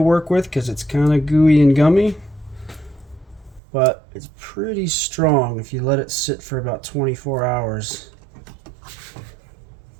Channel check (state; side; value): drops out; left; at 3.6 s